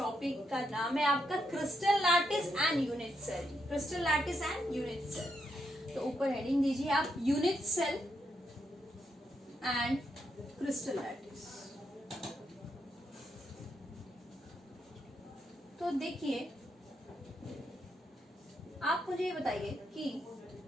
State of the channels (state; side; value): normal; both; correlation 0.81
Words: का नाम है आपका crystal lattice and unit cell. Crystal lattice and unit cell. तो ऊपर हेडिंग दीजिए आप, unit cell and crystal lattice. तो देखिए, आप मुझे ये बताइए कि